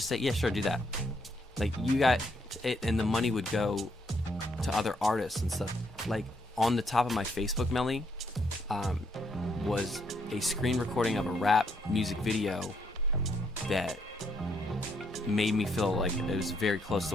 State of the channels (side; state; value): both; normal; correlation 0.73